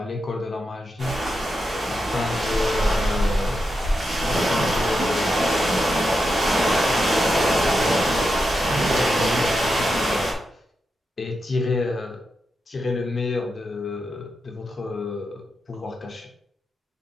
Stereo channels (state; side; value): normal; both; correlation 0.87